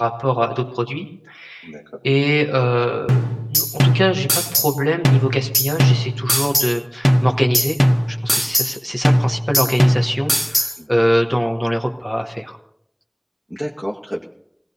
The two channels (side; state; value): both; identical; correlation 1.00